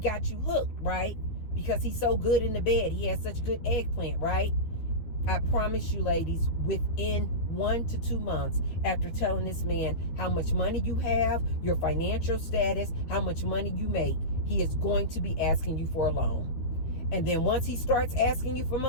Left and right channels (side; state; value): right; late; 12 ms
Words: you hooked, right? Because he's so good in the bed. He has such good eggplant, right? I promise you, ladies, within 1 to 2 months after telling this man how much money you have, your financial status, how much money you make, he is going to be asking you for a loan. And then once he starts asking you for